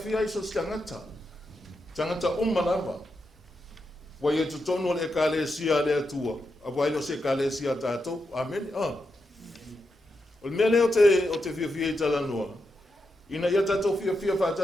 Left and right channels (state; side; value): normal; both; correlation 0.86